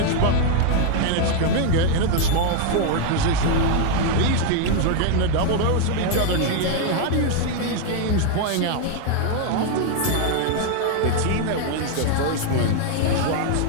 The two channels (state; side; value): different; both; correlation 0.00